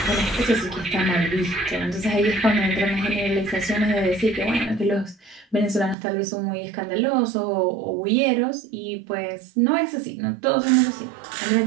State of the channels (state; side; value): drops out; left; at 6.0 s